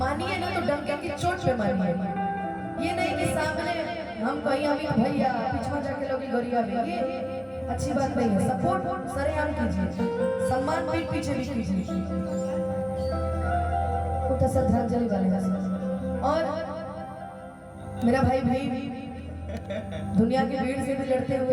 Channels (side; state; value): both; identical; correlation 1.00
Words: ना तो डंके की चोट पे मानिए, ये नहीं कि सामने हम कहीं अभी भैया पिछवा जाके लोग गोरिया भी, ये अच्छी बात नहीं है। सपोर्ट सरेआम कीजिए, सम्मान पीठ पीछे भी कीजिए, उठा श्रद्धांजलि वाले। और मेरा भाई दुनिया की भीड़ से भी लड़ते